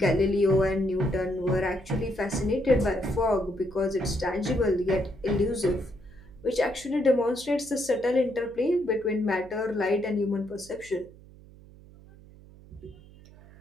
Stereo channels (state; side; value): noise; right; hum, 22 dB below the sound